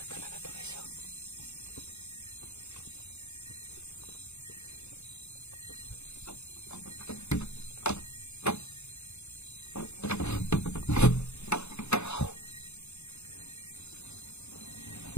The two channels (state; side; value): late; right; 0.81 ms